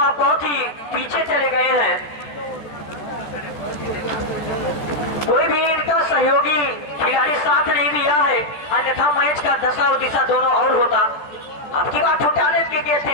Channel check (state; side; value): late; right; 13 ms